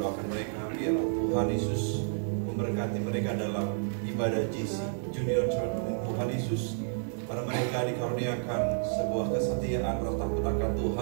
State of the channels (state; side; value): silent; left; digital silence